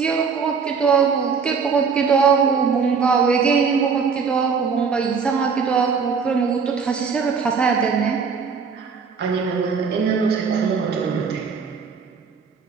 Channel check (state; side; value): quieter; left; 5.7 dB